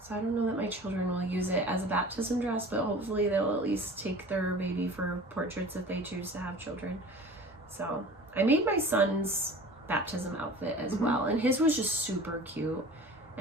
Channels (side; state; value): both; normal; correlation 0.41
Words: so I don't know that my children will use it as a baptism dress, but hopefully they'll at least take their baby for portraits if they choose to have children. So I made my son's baptism outfit as well, and his was just super cute,